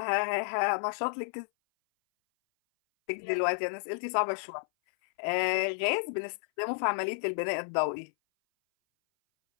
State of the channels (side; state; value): right; silent; 57 dB below the other